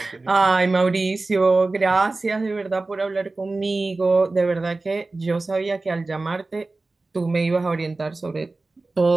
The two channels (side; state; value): left; quieter; 3.3 dB